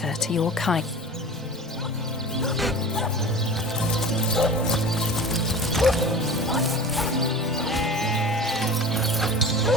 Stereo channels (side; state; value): both; normal; correlation 0.37